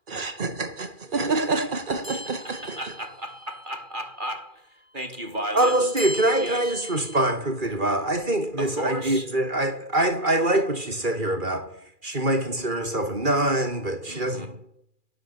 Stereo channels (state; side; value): late; left; 2.4 ms